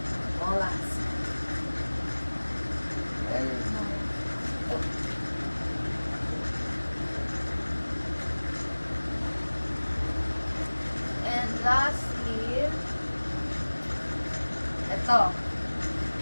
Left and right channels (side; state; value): both; inverted; correlation -1.00